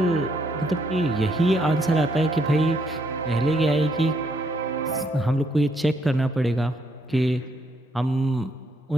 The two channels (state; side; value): normal; both; correlation 0.72